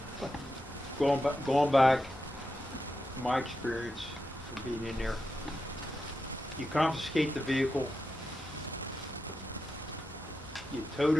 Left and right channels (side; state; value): both; normal; correlation 0.88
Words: Going back, my experience of being in there, you confiscate the vehicle, you tow